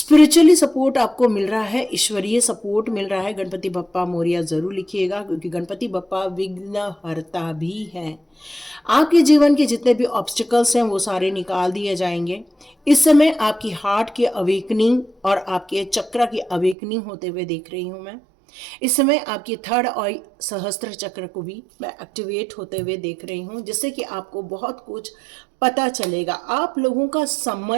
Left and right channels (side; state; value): left; drops out; at 16.8 s